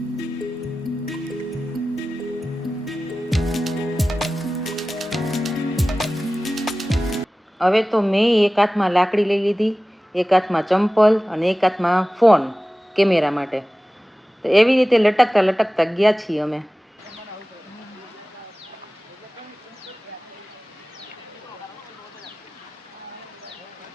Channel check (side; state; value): both; normal; correlation 0.96